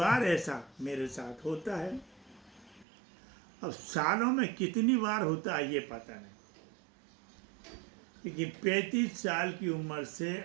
ऐसा मेरे साथ होता है। अब सालों में कितनी बार होता है ये पता नहीं, लेकिन 35 साल की उम्र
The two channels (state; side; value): drops out; left; at 2.9 s